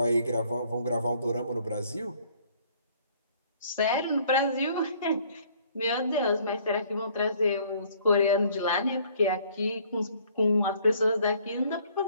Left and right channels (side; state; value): both; inverted; correlation -0.60